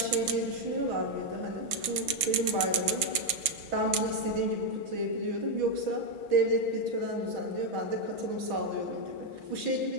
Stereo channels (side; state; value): left; late; 6.3 ms